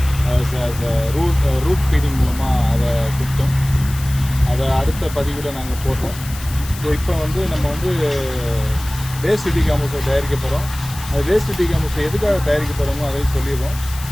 ரூட் ஃபீடிங் மூலமாக அதை கொடுத்தோம். அதை அடுத்த பதிவில் நாங்கள் போட்டோம். ஸோ இப்போ நம்ம வேஸ்ட் டீகாம்போஸை தயாரிக்க போகிறோம். அது வேஸ்ட் டீகாம்போஸை எதுக்காக தயாரிக்க போகிறோமோ அதையும் சொல்லிடுவோம்.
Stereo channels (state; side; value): noise; left; hiss, 14 dB below the sound